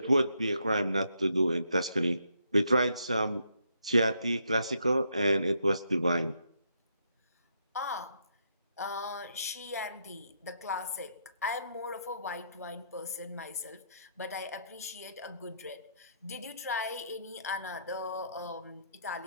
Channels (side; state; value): both; inverted; correlation -0.76